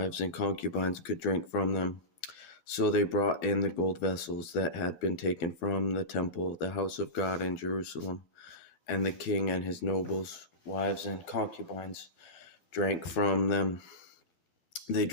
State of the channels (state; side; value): late; right; 12 ms